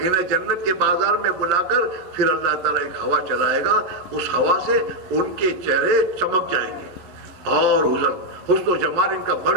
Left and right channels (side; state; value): left; late; 11 ms